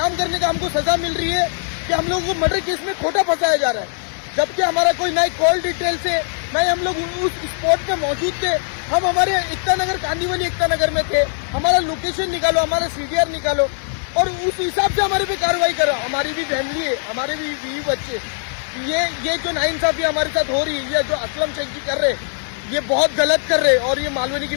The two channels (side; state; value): right; silent; digital silence